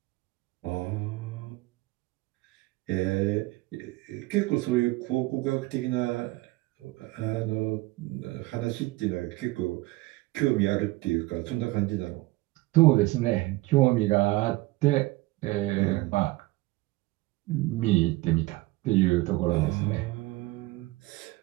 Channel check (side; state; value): left; quieter; 20.4 dB